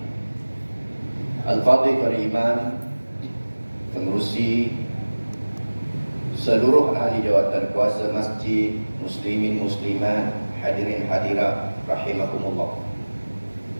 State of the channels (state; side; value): inverted; both; correlation -1.00